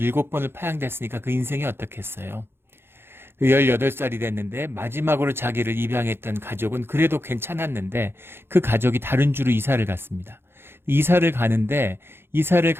파양됐으니까 그 인생이 어떻겠어요. 18살이 됐는데 마지막으로 자기를 입양했던 가족은 그래도 괜찮았는데 그 가족이 다른 주로 이사를 갔습니다. 이사를 가는데 이사를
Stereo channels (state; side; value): late; left; 0.11 ms